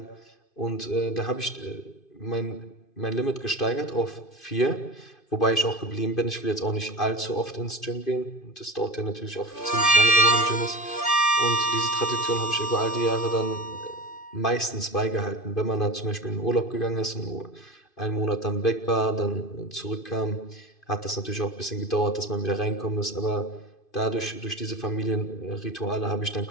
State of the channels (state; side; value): late; right; 2.5 ms